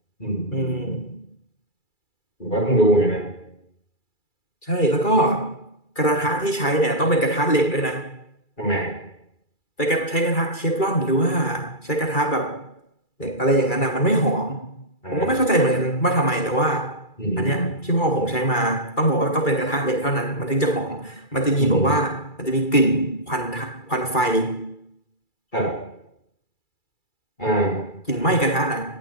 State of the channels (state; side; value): late; right; 2.3 ms